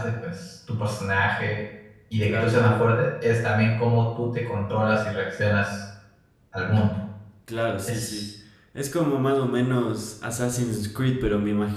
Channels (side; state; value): both; identical; correlation 1.00